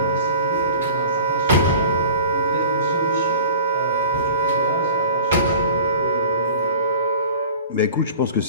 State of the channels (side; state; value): both; inverted; correlation -0.42